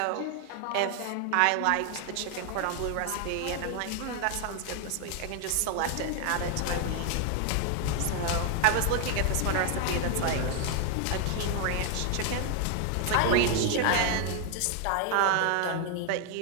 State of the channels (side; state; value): both; different; correlation 0.00